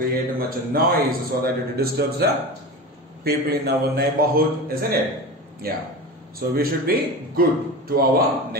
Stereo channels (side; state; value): both; normal; correlation 0.28